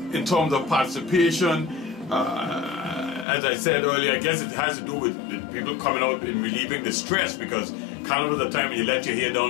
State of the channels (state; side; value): drops out; right; at 3.2 s